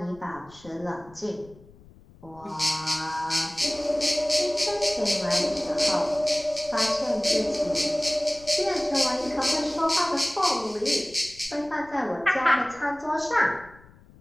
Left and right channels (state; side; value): noise; left; rumble, 24 dB below the sound